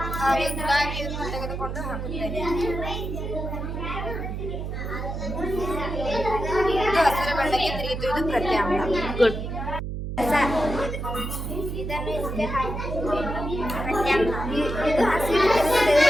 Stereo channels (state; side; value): noise; right; hum, 5 dB below the sound